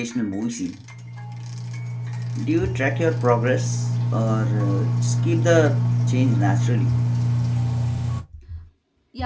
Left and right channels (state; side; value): identical; both; correlation 1.00